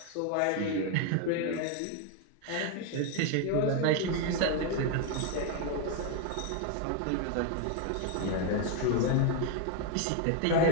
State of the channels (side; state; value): both; different; correlation 0.01